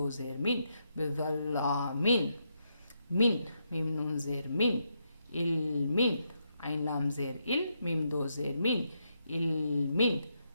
زیر من بظلامین من میم نون زیر من علمین عین لام زیر ال میم دو زیر من علمین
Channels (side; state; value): both; inverted; correlation -0.80